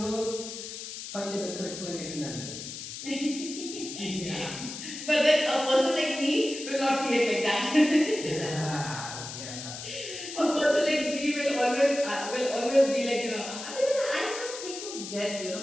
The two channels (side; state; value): left; noise; hiss, 9 dB below the sound